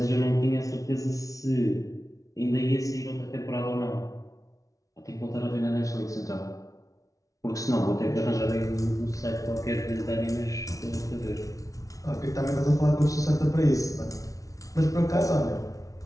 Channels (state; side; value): late; right; 0.17 ms